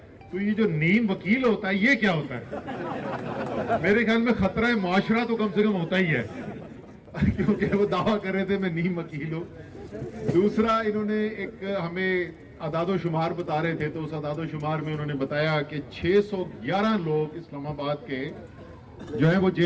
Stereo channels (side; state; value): both; identical; correlation 1.00